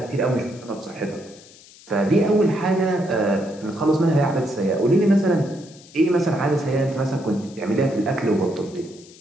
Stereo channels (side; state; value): left; noise; hiss, 23 dB below the sound